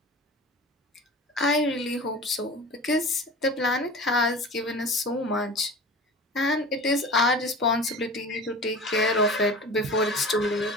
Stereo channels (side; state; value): both; normal; correlation 0.36